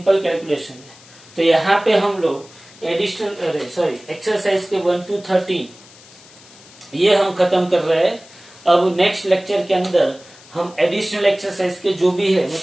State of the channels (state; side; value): noise; left; hiss, 23 dB below the sound